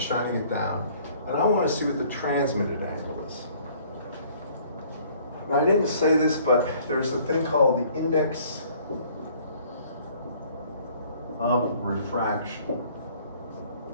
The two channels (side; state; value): both; inverted; correlation -0.57